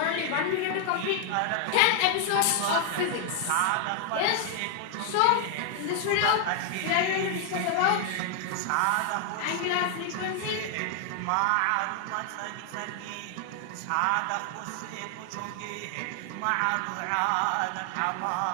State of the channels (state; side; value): different; both; correlation 0.00